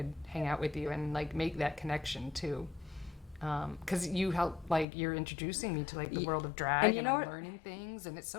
hang out with you and like make that connection too. Because you help, like, you're introducing me to like the world of drag, and I'm learning things, and it's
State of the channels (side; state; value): right; drops out; at 4.9 s